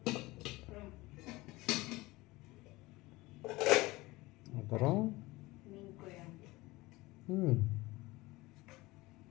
அப்புறம் மீன் குழம்பு.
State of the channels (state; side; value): quieter; right; 20.8 dB